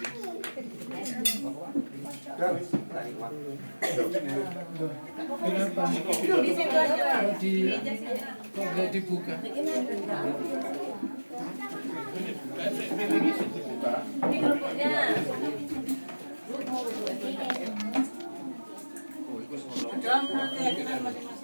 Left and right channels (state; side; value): inverted; both; correlation -1.00